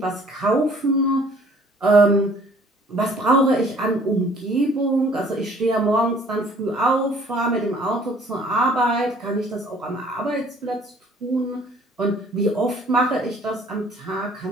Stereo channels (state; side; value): normal; both; correlation 0.56